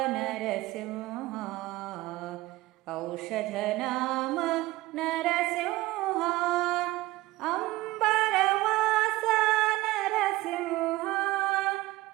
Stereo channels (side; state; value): left; quieter; 18.3 dB